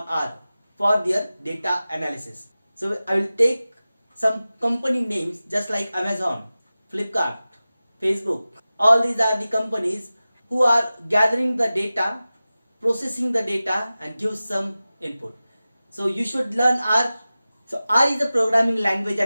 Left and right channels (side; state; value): both; inverted; correlation -0.96